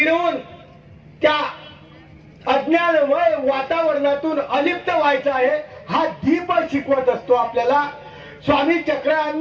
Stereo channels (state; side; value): identical; both; correlation 1.00